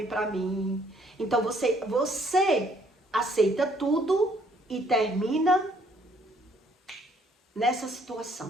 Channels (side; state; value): both; normal; correlation 0.65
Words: para mim. Então, você aceita tudo e termina nessa